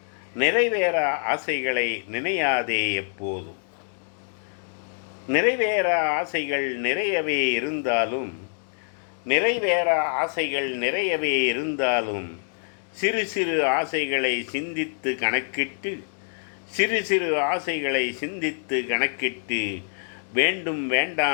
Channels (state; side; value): silent; right; digital silence